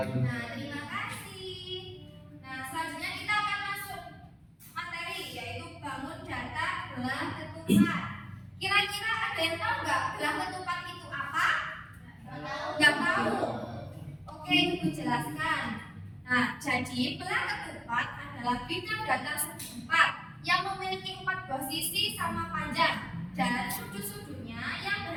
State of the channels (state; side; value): identical; both; correlation 1.00